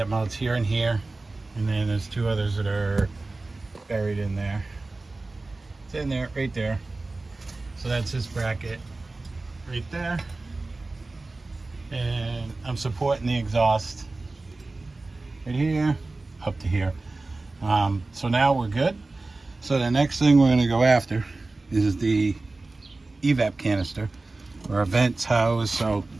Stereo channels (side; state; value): left; quieter; 3.3 dB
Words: mounts here and here, and then there's 2 others that are buried in there. It's in there, right there. So that's this bracket right there. And I'm supporting the exhaust right here up to here. So now we're good. So the next thing we're going to go after is the EVAP canister where our vent's housed. So